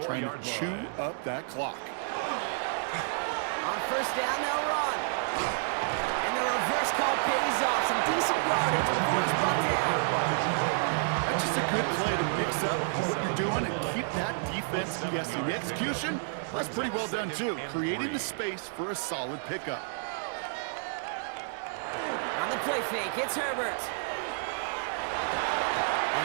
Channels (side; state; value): left; silent; digital silence